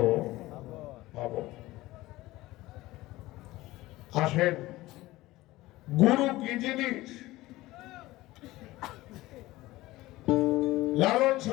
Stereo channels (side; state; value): right; quieter; 18.2 dB